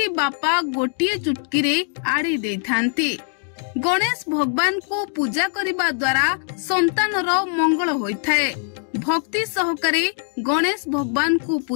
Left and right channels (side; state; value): right; silent; 56 dB below the other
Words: बापा गोटिए चुटकीरे आड़ी देथांती। गणेश भगवान को पूजा करिबा द्वारा संतानर मंगल होइथाए। भक्ति सहकारे गणेश भगवान को